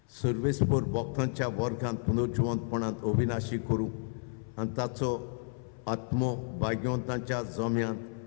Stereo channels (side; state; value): right; silent; 57 dB below the other